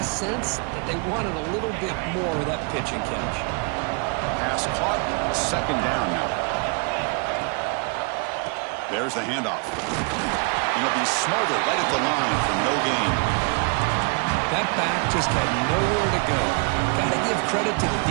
sense that they wanted a little bit more of that pitch and catch. Pass caught. 2nd down now. There's the handoff. And he'll be smothered right at the line for no gain. That back just had nowhere to go. Got to give credit to the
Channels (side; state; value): left; quieter; 35.6 dB